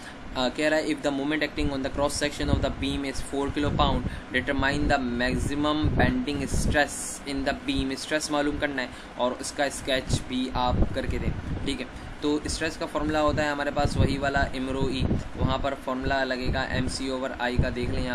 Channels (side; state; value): both; identical; correlation 1.00